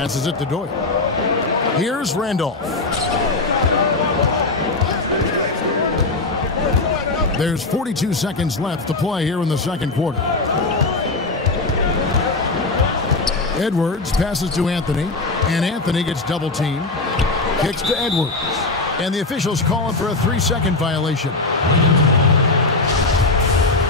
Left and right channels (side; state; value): right; quieter; 3.3 dB